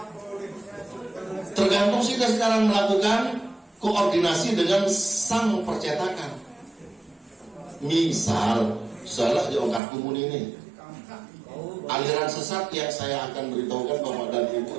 Tergantung kita sekarang melakukan koordinasi dengan sang percetakan. Misal, salah di Ongkar Kumun ini. Aliran sesat yang saya akan beritahukan Bapak dan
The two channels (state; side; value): drops out; left; at 9.8 s